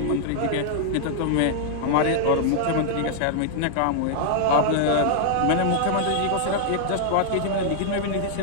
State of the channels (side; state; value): both; different; correlation -0.01